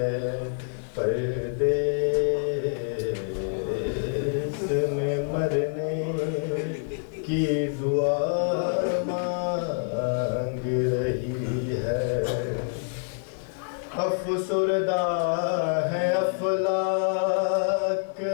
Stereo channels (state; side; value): silent; right; 60 dB below the other